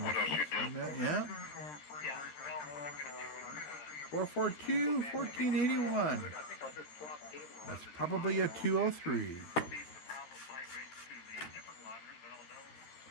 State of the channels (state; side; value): late; right; 13 ms